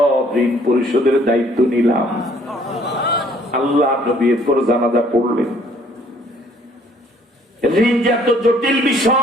ঋণ পরিশোধের দায়িত্ব নিলাম। আল্লাহ নবী এরপর জানাজা পড়লেন। ঋণ যে এত জটিল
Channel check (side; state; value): both; normal; correlation 0.60